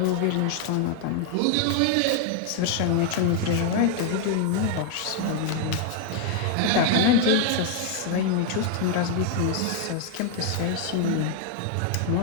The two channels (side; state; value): both; different; correlation 0.00